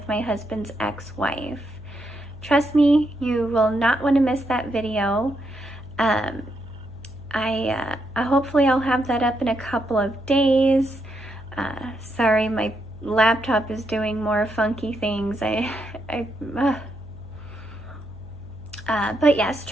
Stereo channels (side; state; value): left; noise; hum, 19 dB below the sound